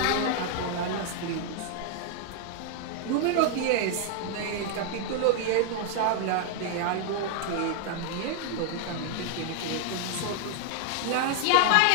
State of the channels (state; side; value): different; both; correlation 0.00